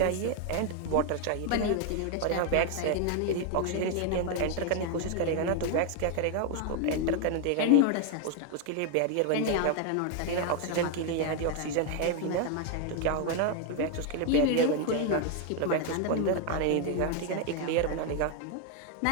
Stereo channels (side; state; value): both; different; correlation 0.01